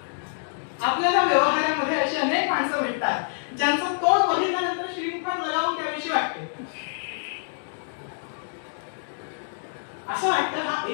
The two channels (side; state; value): right; silent; digital silence